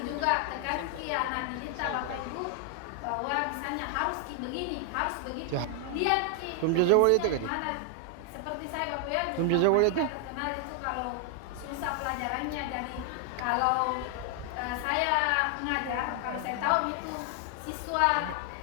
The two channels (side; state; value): both; different; correlation 0.00